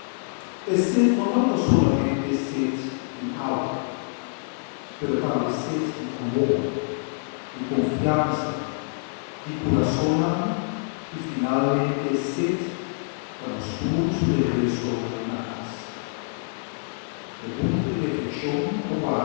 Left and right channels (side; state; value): right; silent; 61 dB below the other